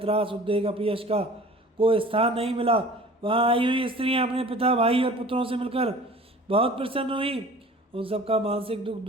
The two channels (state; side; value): normal; both; correlation 0.45